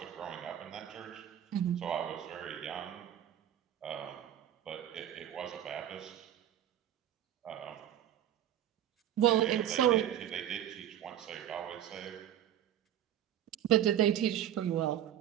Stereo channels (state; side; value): quieter; left; 11.1 dB